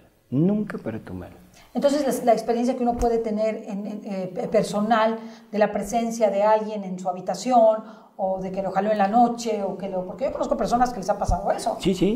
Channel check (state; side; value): identical; both; correlation 1.00